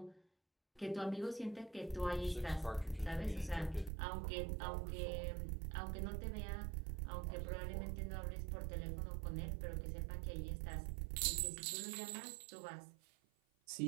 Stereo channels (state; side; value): drops out; left; at 3.9 s